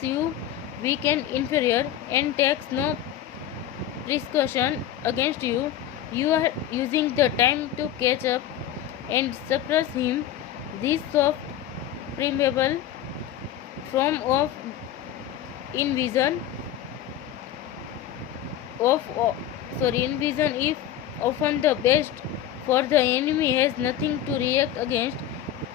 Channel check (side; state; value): right; quieter; 11.3 dB